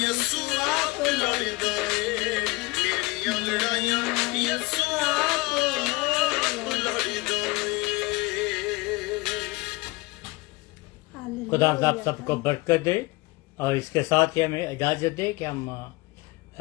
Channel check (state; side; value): quieter; right; 23.1 dB